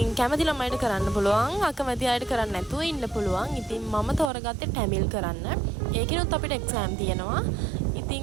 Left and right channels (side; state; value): left; drops out; at 4.3 s